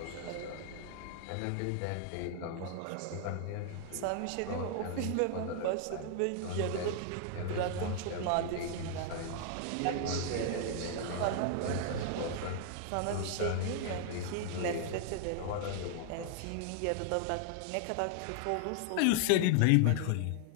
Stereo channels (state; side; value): different; both; correlation 0.00